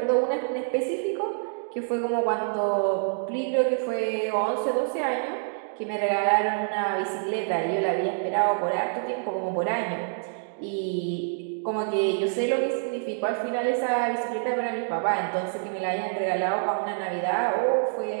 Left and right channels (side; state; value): left; silent; digital silence